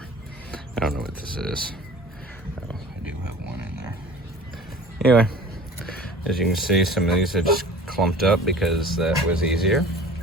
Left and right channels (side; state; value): both; normal; correlation 0.43